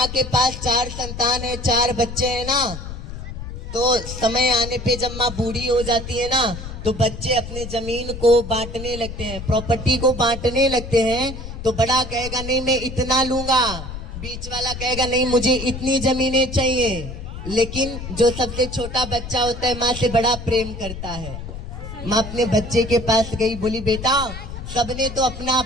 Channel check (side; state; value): left; noise; rumble, 9 dB below the sound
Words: के पास 4 संतान है, 4 बच्चे हैं ना, तो समय आने पे जब माँ बूढ़ी हो जाती है ना तो बच्चे अपने जमीन को बांटने लगते हैं, प्रॉपर्टी को बांटने लगते हैं। तो बड़ा कहेगा नहीं मैं इतना लूंगा, बीच वाला कहेगा नहीं मुझे इतनी जमीनें चाहिए। लेकिन जो सबसे छोटा बच्चा होता है माँ से बड़ा प्रेम करता है। माँ अपने बच्चे के पास गई, बोली बेटा सबने तो अपना